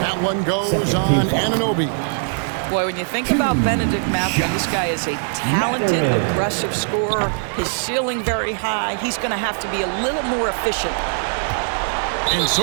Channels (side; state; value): left; silent; 57 dB below the other